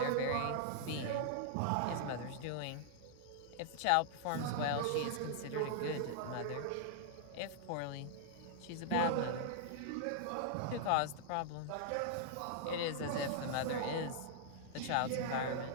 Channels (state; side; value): different; both; correlation -0.01